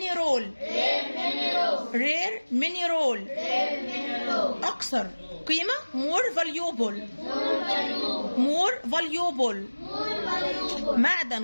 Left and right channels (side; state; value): both; inverted; correlation -1.00